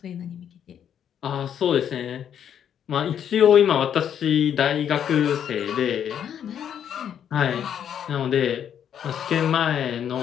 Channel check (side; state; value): right; quieter; 9.0 dB